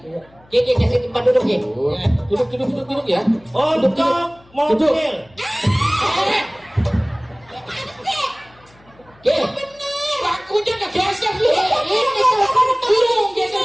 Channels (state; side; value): noise; left; hum, 29 dB below the sound